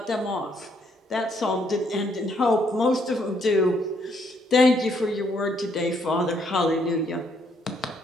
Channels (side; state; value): both; normal; correlation 0.70